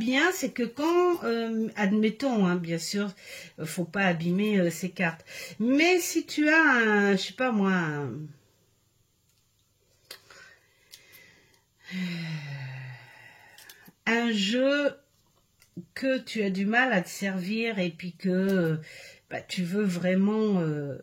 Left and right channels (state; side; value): identical; both; correlation 1.00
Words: c'est que quand, admettons, hein, bien sûr, faut pas abîmer ces cartes. Mais si tu as un, je sais pas moi, un jeu que tu as du mal à te servir et puis que bah, tu veux vraiment...